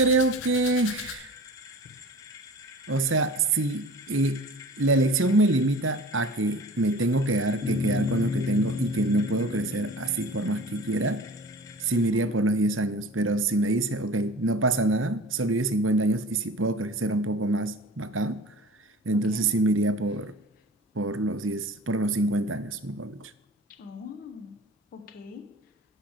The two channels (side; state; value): both; normal; correlation 0.40